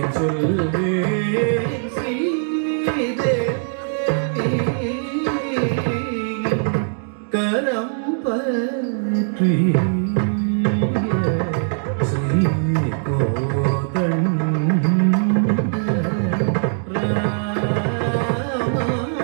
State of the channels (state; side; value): silent; left; digital silence